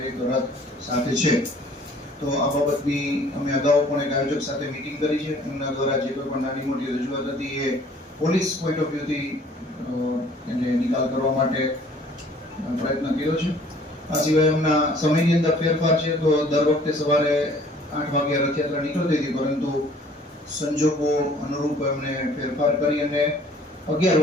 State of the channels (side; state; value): both; normal; correlation 0.55